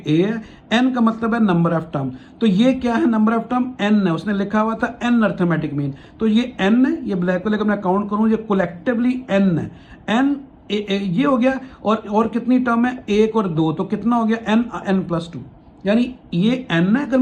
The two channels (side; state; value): both; identical; correlation 1.00